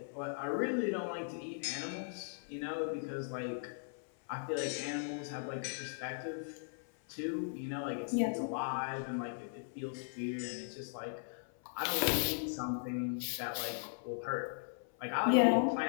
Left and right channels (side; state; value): right; silent; 52 dB below the other